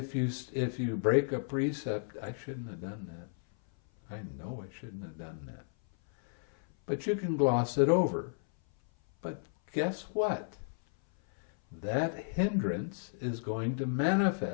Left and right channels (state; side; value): silent; right; 56 dB below the other